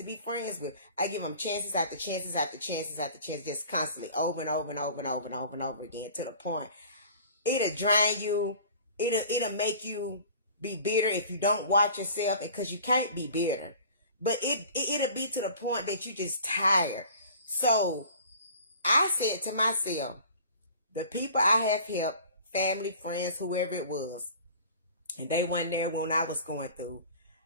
be friends with. I give them chances after chances after chances after chances, just constantly, over and over and over and over and over and over again, to the point it'll drain you. It'll make you be bitter if you don't watch yourself, because you can't be bitter. But it'll be to the point that you just tired. So I said to myself, the people I have helped, family, friends, whoever it was, and they weren't there when I was going through,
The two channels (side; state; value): both; inverted; correlation -0.45